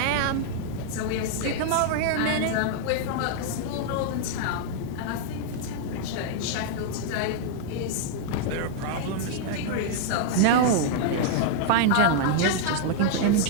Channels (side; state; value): both; different; correlation -0.01